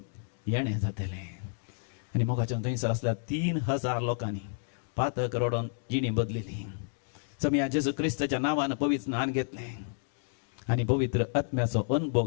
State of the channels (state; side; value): silent; right; digital silence